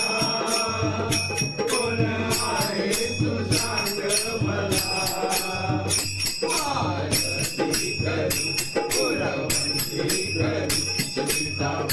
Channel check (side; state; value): both; identical; correlation 1.00